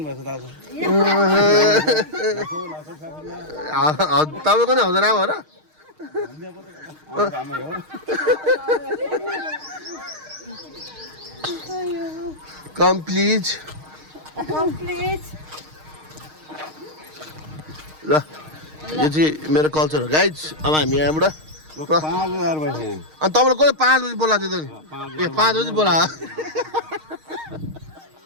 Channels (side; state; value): left; late; 6.5 ms